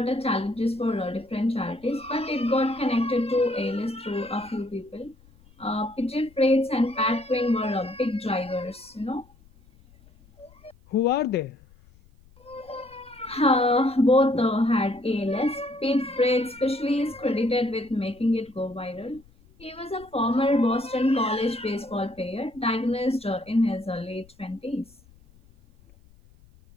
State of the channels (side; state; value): left; noise; rumble, 27 dB below the sound